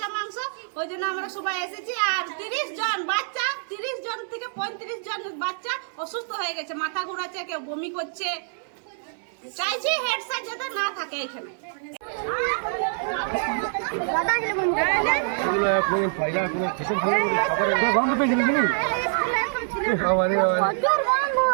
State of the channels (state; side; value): silent; left; digital silence